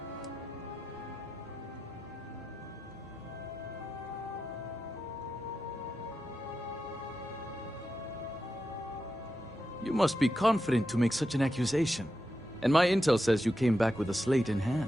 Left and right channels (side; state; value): both; normal; correlation 0.89